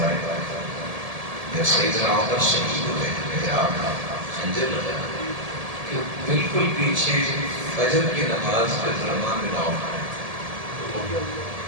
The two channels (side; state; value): left; late; 1.7 ms